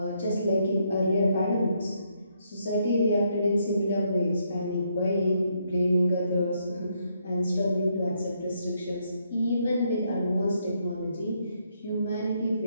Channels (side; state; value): both; inverted; correlation -0.75